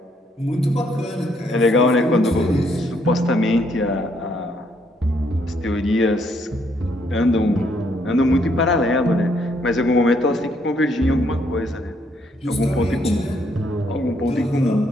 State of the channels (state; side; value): normal; both; correlation 0.71